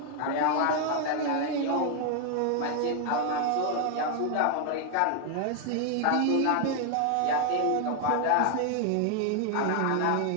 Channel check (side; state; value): both; different; correlation 0.00